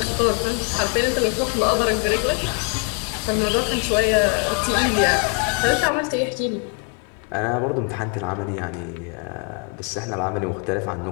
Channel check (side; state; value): right; quieter; 39.2 dB